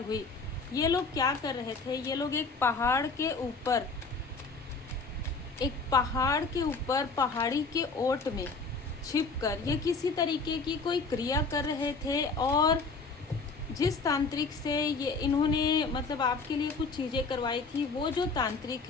हुई। ये लोग क्या कर रहे थे? ये लोग एक पहाड़ के ऊपर पहाड़ी के ओट में छिपकर ये किसी तरीके की कोई क्रिया कर रहे थे और जिस तांत्रिक से ये इन्होंने मतलब आपके लिए कुछ चीज़ें करवाई थी, वो जो तांत्रिक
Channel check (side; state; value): right; quieter; 4.2 dB